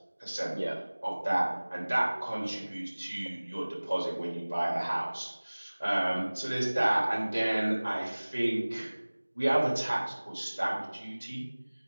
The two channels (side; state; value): both; inverted; correlation -1.00